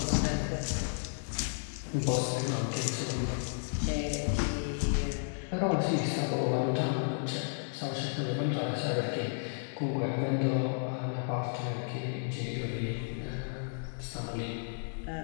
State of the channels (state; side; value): silent; right; digital silence